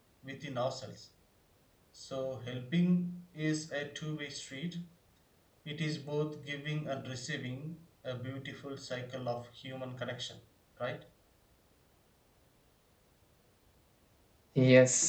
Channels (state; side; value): identical; both; correlation 1.00